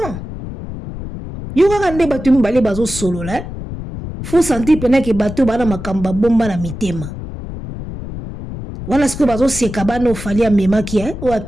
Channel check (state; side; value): noise; left; rumble, 9 dB below the sound